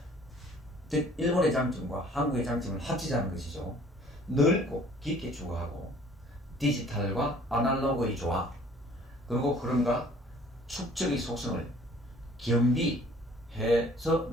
즉 일본의 장점과 한국의 장점을 합치자는 것이죠. 넓고 깊게 추구하고 디지털과 아날로그의 조화 그리고 흐름과 축적의 속성을 겸비해서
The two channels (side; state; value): both; normal; correlation 0.54